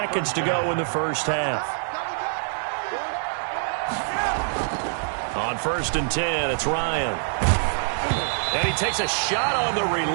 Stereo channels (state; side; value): silent; left; digital silence